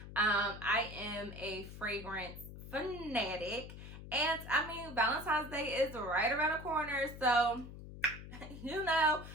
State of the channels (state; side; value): noise; left; hum, 13 dB below the sound